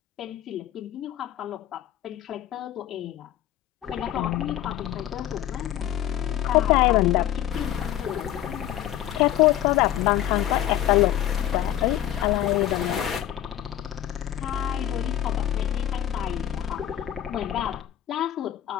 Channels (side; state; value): right; quieter; 12.0 dB